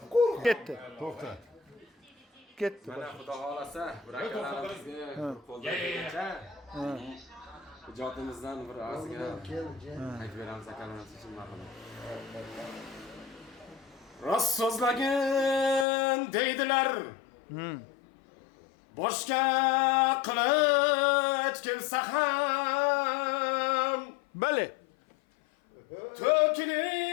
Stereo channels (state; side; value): drops out; right; at 15.9 s